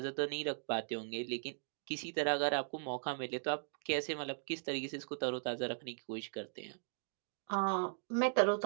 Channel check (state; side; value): silent; left; digital silence